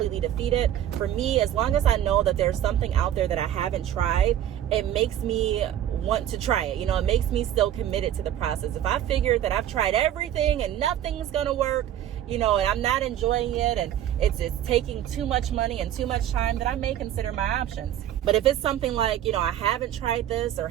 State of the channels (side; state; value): left; quieter; 11.2 dB